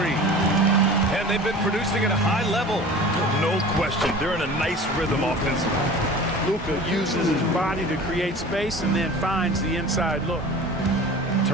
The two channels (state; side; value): normal; both; correlation 0.39